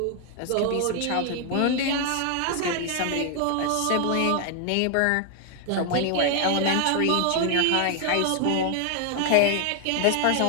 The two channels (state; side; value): different; both; correlation 0.00